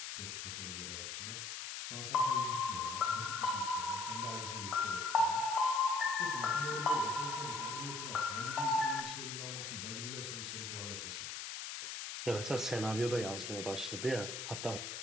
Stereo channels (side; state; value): left; noise; hiss, 6 dB below the sound